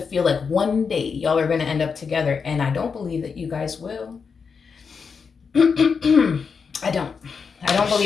like one day y'all are going to end up together. And I don't believe that you guys will. I don't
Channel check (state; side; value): quieter; right; 5.7 dB